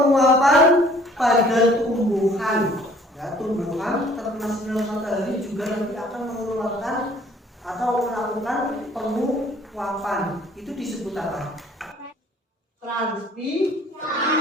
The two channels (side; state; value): both; normal; correlation 0.56